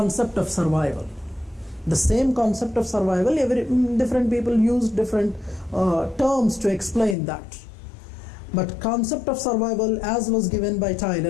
of survival. The same concept of survival, different people use different terms to explain that. But concept of survival, as was given by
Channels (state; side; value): drops out; right; at 7.2 s